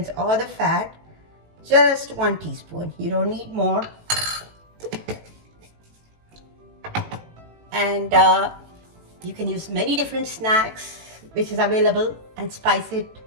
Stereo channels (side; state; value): left; late; 18 ms